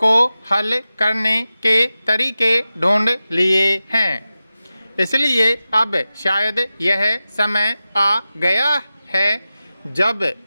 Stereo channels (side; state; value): both; inverted; correlation -0.94